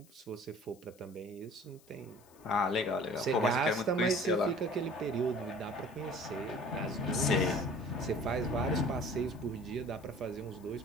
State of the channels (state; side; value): noise; left; hiss, 27 dB below the sound